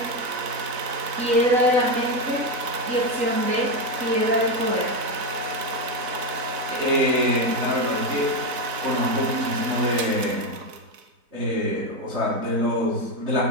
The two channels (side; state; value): left; late; 3.9 ms